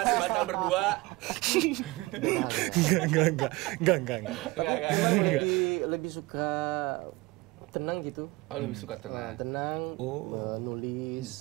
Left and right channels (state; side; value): quieter; left; 22.3 dB